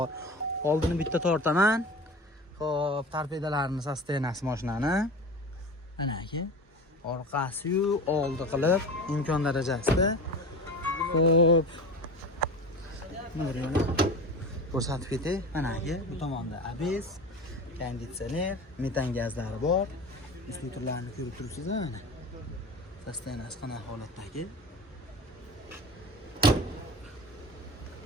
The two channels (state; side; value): normal; both; correlation 0.33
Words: Oldini bitta tortaman. Xo'p, torpedalarini sostenasi mashinani. Mana aka. Orqasi-yu oldi qilib imkon darajasida. Xo'p. Nuriyona ko'rsatib ketay. Mana aka, bu tomonda ABS, konditsioner, metan gazlari bor. Instruktorlarni ko'rib turibsiz mana. Sostenasi qanaqa holatdagi?